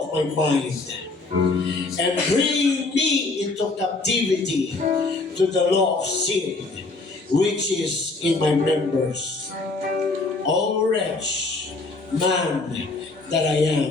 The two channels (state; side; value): quieter; right; 3.5 dB